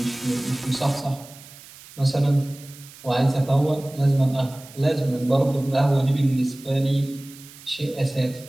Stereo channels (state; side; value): noise; right; hiss, 20 dB below the sound